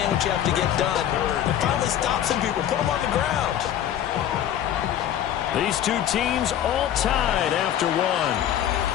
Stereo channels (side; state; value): right; quieter; 10.7 dB